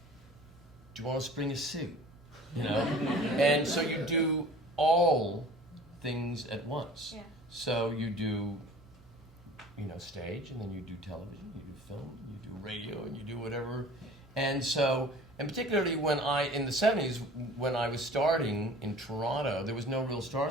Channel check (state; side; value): normal; both; correlation 0.45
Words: "Do you want to spring a suit?" And so you do all things at once. Yeah. So you do, stage, and then you do television, you do film, you do radio, and you do whatever. And so, and particularly in the 70s, when I was starting in Toronto, there was no real star